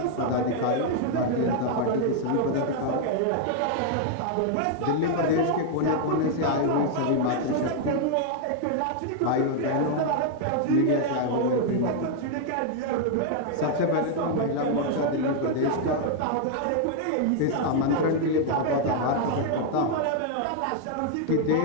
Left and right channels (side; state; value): both; different; correlation 0.00